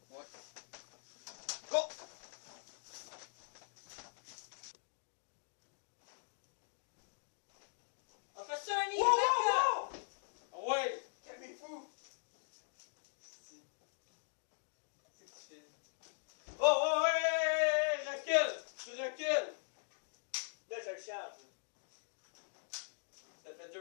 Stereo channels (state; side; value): silent; right; digital silence